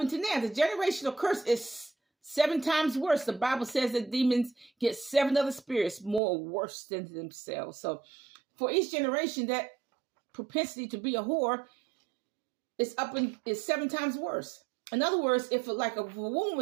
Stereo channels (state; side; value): drops out; left; at 6.2 s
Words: now. The generational curse is 7 times worse. The Bible says that demons get 7 other spirits more worse than themselves. So for each generation, that propensity to be a whore is 7 times worse. In other words, if a